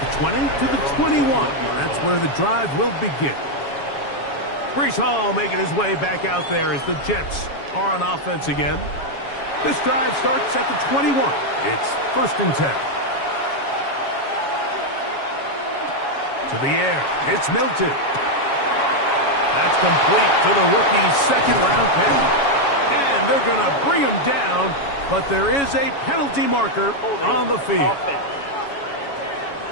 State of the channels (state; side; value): late; right; 7.2 ms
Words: 20 to the 21. That's where the drive will begin. Breece Hall making his way back out there as the Jets are on offense again. This drive starts at the 21. It's 1st and 10. To the air, it's Milton. That's complete to the rookie's 2nd-round pick. And they're going to bring him down, but there is a penalty marker on the field.